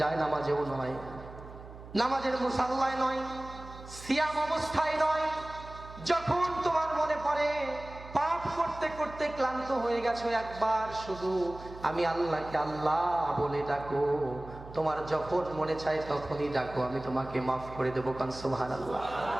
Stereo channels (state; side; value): noise; right; hum, 15 dB below the sound